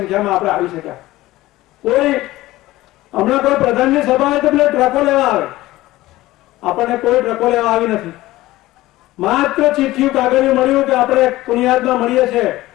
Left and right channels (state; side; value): quieter; right; 17.2 dB